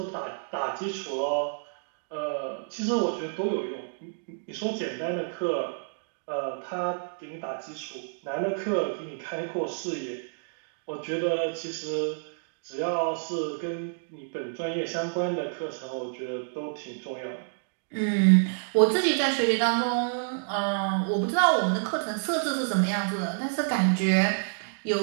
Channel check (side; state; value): left; silent; digital silence